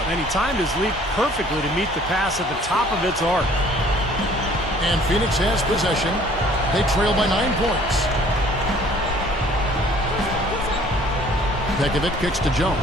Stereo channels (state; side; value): normal; both; correlation 0.55